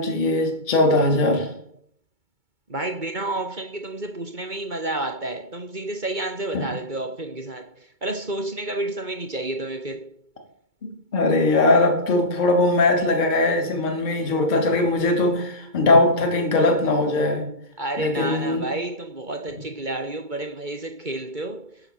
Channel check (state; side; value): late; left; 2.2 ms